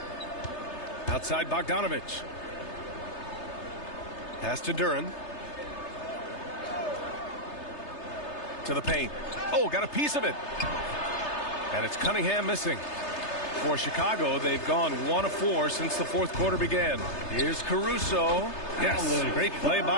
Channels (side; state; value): right; late; 3.3 ms